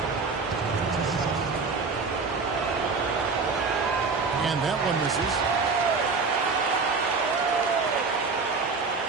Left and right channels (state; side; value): quieter; left; 4.5 dB